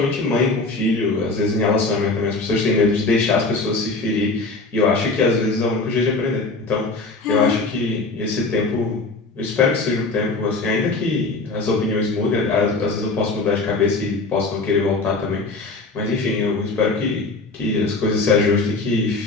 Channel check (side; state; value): right; quieter; 3.5 dB